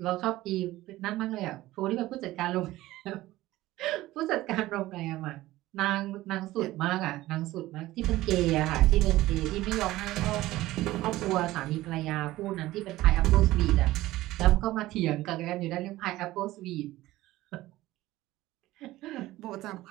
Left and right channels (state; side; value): quieter; left; 16.8 dB